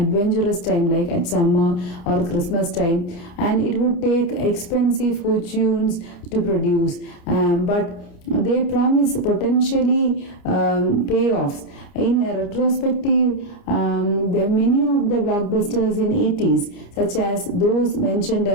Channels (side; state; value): right; late; 29 ms